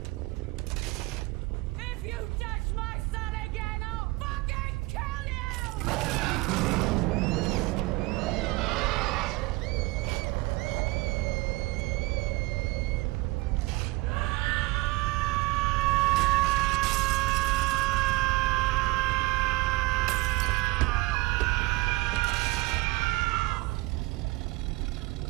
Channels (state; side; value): quieter; left; 22.1 dB